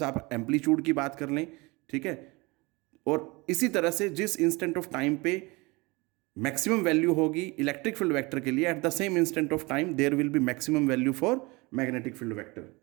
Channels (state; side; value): quieter; left; 25.0 dB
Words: आप एम्पलीट्यूड की बात कर लें। ठीक है, और इसी तरह से जिस इंस्टेंट ऑफ टाइम पे मैक्सिमम वैल्यू होगी इलेक्ट्रिक फील्ड वेक्टर के लिए, at the same instant of time there will be maximum value for magnetic field vector.